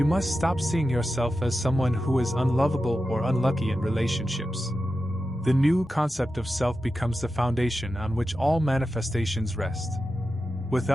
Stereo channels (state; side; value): normal; both; correlation 0.91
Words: must stop seeing yourself as someone who is unlovable or unlucky in relationships. The new concept of self becomes the foundation on which all manifestations rest.